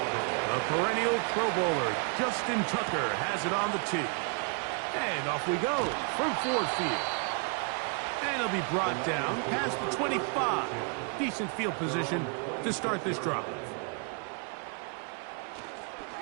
The perennial Pro Bowler Justin Tucker has it on the tee. And off we go from Ford Field. And it'll be brought down past the 25. Decent field position to start this drive.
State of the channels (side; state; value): left; quieter; 38.8 dB